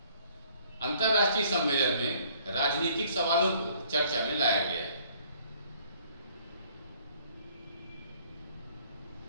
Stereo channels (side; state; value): both; inverted; correlation -0.59